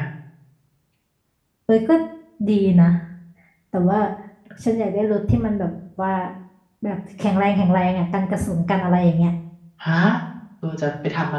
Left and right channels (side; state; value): both; identical; correlation 1.00